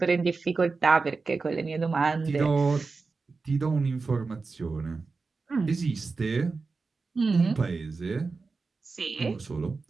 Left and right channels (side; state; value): left; quieter; 4.2 dB